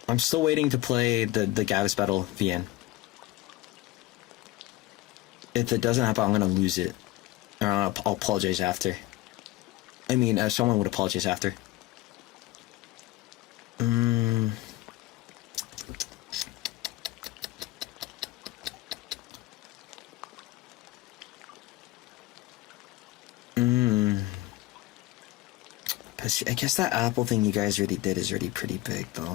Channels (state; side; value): quieter; right; 17.6 dB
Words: I'm still waiting to play the Gavs Battle VN. If it doesn't happen, I'm gonna lose it. Or I'll apologize after. I mean, someone would apologize after. I guess that Apple thing you guys already did is already pretty big,